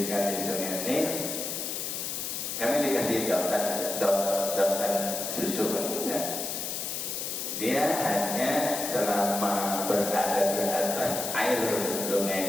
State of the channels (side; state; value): left; noise; hiss, 4 dB below the sound